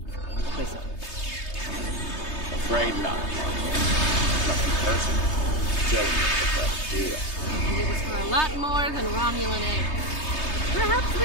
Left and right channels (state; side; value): late; right; 3.3 ms